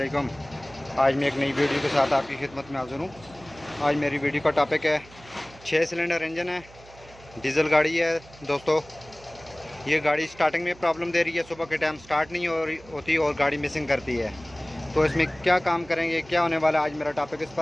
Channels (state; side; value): noise; right; hum, 22 dB below the sound